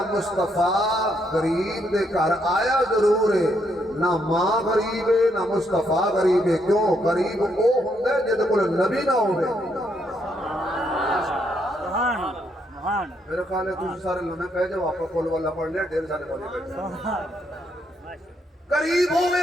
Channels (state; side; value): normal; both; correlation 0.75